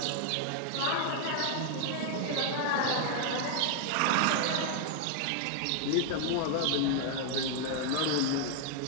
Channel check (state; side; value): different; both; correlation 0.00